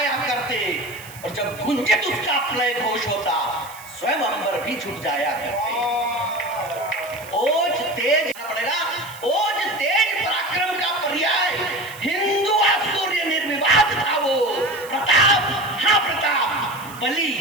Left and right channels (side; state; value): right; noise; hiss, 18 dB below the sound